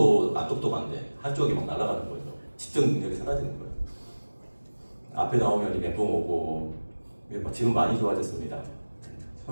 안 똑똑한데 한쪽이 막 날아가는 거죠. 집중 능력이 사라지는 거예요. 앞에 나오면 멘붕 오고 지금 많이 좋아졌습니다.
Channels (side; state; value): both; inverted; correlation -1.00